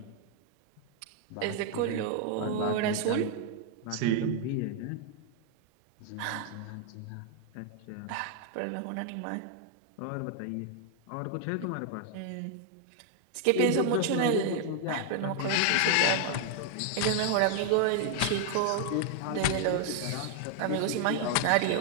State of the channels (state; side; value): different; both; correlation 0.00